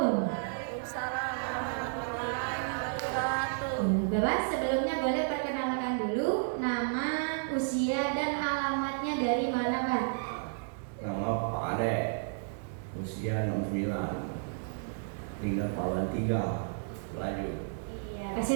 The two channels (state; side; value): silent; left; digital silence